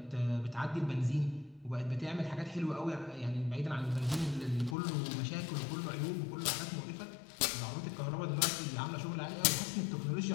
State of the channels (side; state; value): right; drops out; at 4.8 s